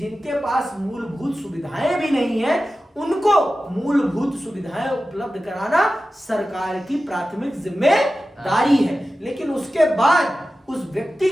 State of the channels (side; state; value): both; normal; correlation 0.94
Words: पास मूलभूत सुविधाएं भी नहीं है, उनको मूलभूत सुविधाएं उपलब्ध कराना सरकार की प्राथमिक जिम्मेदारी है। लेकिन उसके बाद उस व्यक्ति